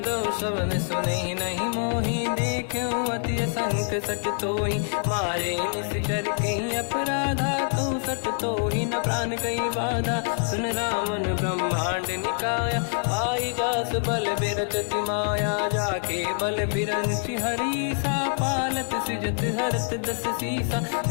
दो शवन सुने नहीं मोही देखे अति संक सट तोही मारे निश्चर कहीं अपराधा तो सट तोही न प्राण कहीं बाधा सुन रावण ब्रह्मांड निकाया पाई जास बल बिरचति माया जाके बल बिरंचि हरीसा पालत सिजत हरत दस सीसा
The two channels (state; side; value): silent; right; digital silence